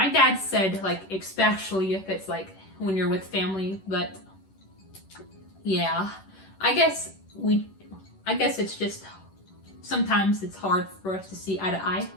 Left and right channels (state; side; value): late; right; 10 ms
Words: dad said like especially if it's like when you're with family, but yeah, I guess it's just sometimes it's hard for us to see eye to eye.